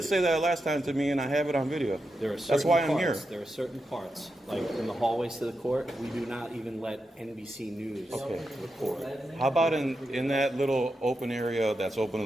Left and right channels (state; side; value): normal; both; correlation 0.87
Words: say that last time to me, and I have it on video. There are certain That's why I'm here. parts, There are certain parts, like in the hallways to the court, we do not even let NBC News Okay. record. How about in that little open area that's open to